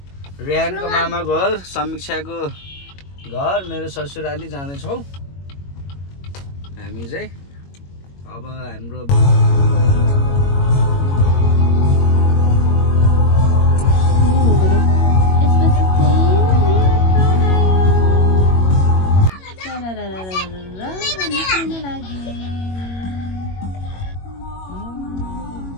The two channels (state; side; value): late; right; 21 ms